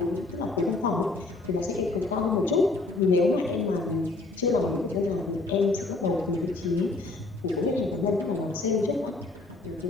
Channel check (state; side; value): quieter; right; 3.3 dB